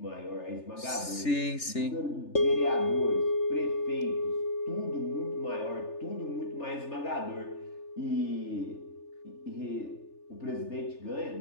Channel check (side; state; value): right; late; 3.4 ms